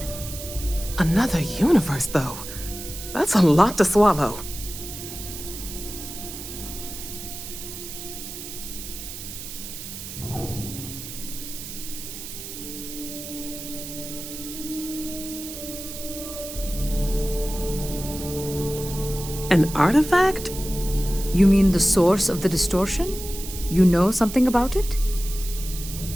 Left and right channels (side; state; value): right; noise; hiss, 10 dB below the sound